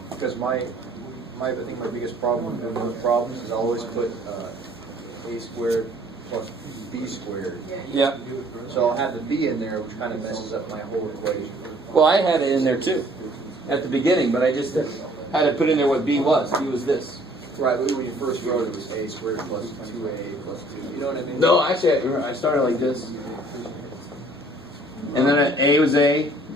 because my I think my biggest problem with those problems is I always put a squared plus b squared. Yeah. So I'll have the b in there, which kind of messes up my whole equation. Well, I had it in there too, at the beginning, but I just had to put in there what b was. B was this. Right, but when you first wrote it was a squared plus 2a plus 2. You know what I mean? No, actually, I started like this. And then a was a,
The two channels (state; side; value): normal; both; correlation 0.57